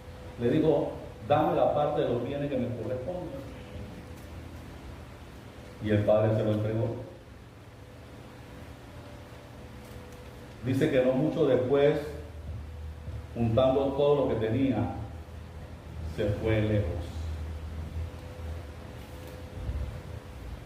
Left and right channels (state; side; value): identical; both; correlation 1.00